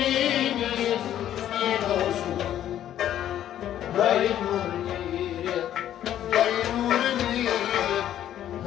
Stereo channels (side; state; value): right; quieter; 11.3 dB